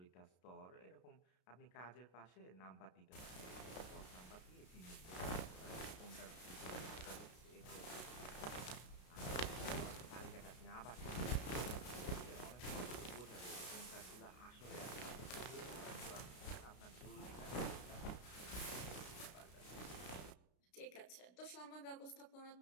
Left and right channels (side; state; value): right; late; 33 ms